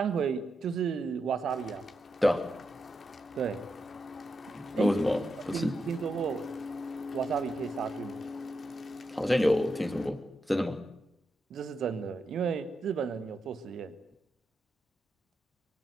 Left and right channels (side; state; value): both; normal; correlation 0.85